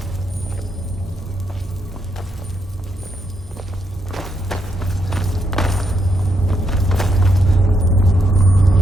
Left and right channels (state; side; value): normal; both; correlation 0.78